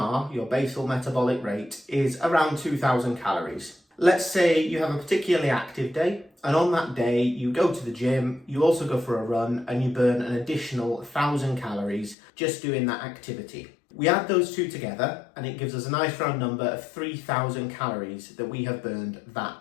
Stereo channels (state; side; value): drops out; right; at 12.2 s